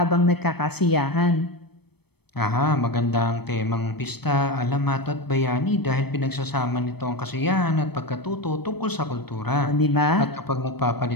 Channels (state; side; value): late; right; 0.97 ms